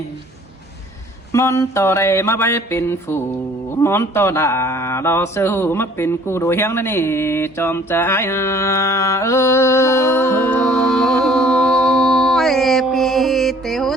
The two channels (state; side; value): normal; both; correlation 0.55